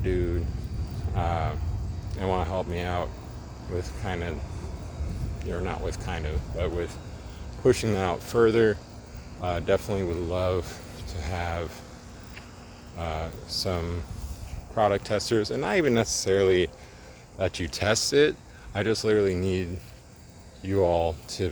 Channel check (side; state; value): both; identical; correlation 1.00